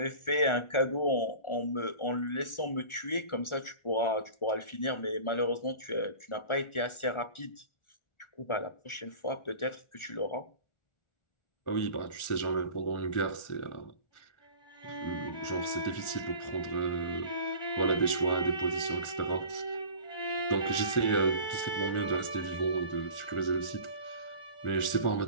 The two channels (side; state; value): right; late; 1.4 ms